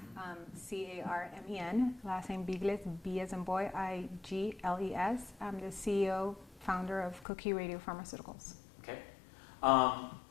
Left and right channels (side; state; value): right; drops out; at 7.2 s